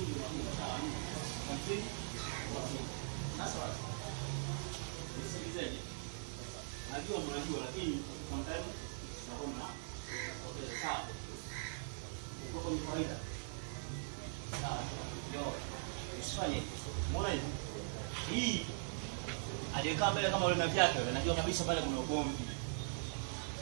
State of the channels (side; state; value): left; silent; 50 dB below the other